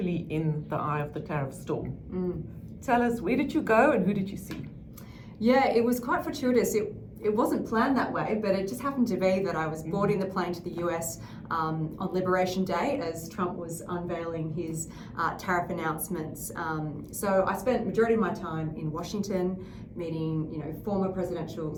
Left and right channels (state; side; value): identical; both; correlation 1.00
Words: in the eye of the tariff storm. Tell us, where did you go and who did you see? Yeah, it was quite fortuitous. It wasn't planned that way, but it just happened to be that I was boarding the plane to the US on Liberation Day as Trump was unveiling his tariff announcements. So I spent majority of my time in Washington meeting, former presidential